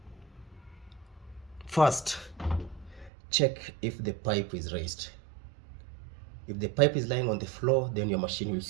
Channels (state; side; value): drops out; left; at 3.1 s